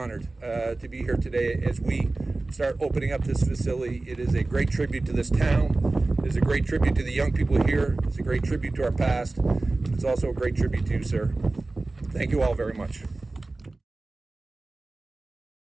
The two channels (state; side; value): quieter; left; 3.2 dB